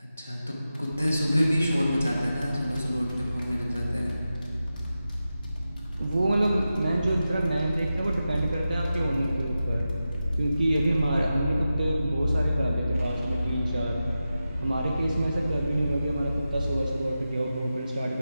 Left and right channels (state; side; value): inverted; both; correlation -0.92